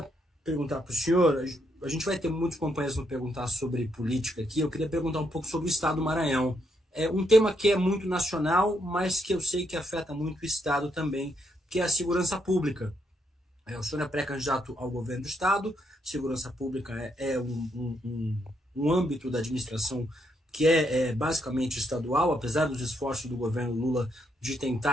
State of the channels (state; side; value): normal; both; correlation 0.76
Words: perguntar para o senhor. A gente vai ter muitos companheiros no perguntar sobre política aqui. Eu queria perguntar um pouco sobre o Estado do Maranhão. É um tema que é muito nacional, mas que eu sei que afeta muito o Estado também, que é a segurança pública. O senhor é pré-candidato ao governo do Estado, segurança pública é um âmbito da administração que é basicamente estadual, apesar dos esforços do governo Lula de